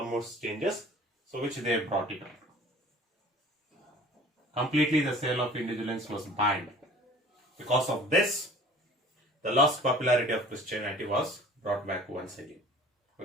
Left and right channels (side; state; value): both; normal; correlation 0.47